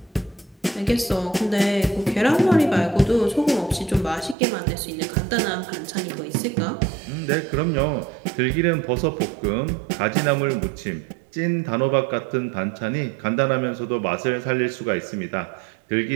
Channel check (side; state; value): left; drops out; at 4.4 s